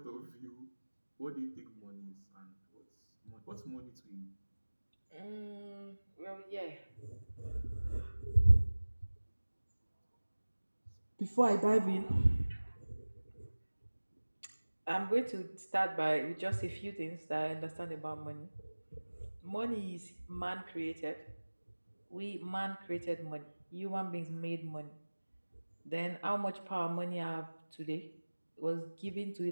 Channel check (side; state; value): both; inverted; correlation -1.00